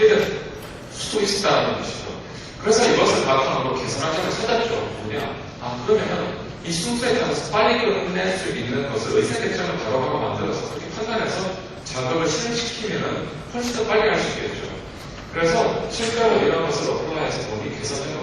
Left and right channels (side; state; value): both; identical; correlation 1.00